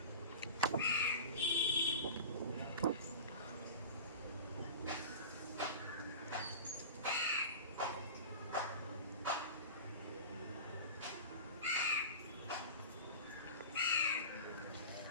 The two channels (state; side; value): inverted; both; correlation -0.32